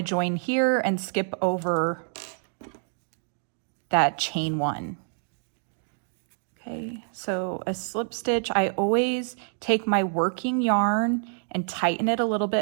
join here and skip over that chain 1. Okay, so a slip stitch, I always take my working yarn and tighten it a little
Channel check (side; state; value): left; silent; 60 dB below the other